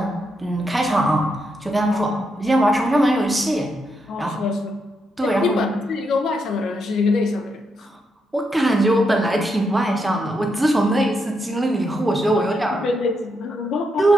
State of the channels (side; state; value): both; normal; correlation 0.81